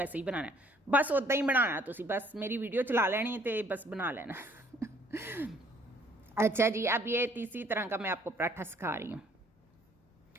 ही बनाना है, बस उदा ही बनाना। तुसी बस मेरी वीडियो चला लेनी तो बस बना लेना अच्छा जी, अब ये तीसरी तरह का मैं आपको पराठा सिखा रही हूँ।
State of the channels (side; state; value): both; normal; correlation 0.61